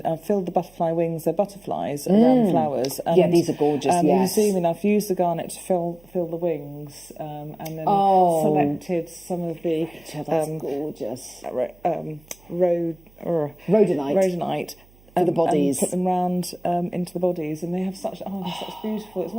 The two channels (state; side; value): noise; right; hum, 28 dB below the sound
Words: filled the butterfly wings. They're butterflies around the flowers. And, yeah, these are gorgeous, yes. You zoom in, I've used the garnet to fill the wings and then selected some of the... that's gorgeous. Rhodonite. For the bodies, and put them round into the bodies, and they have such such beautiful. It's